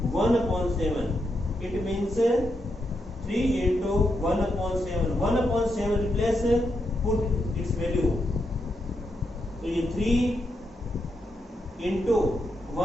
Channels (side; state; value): both; normal; correlation 0.83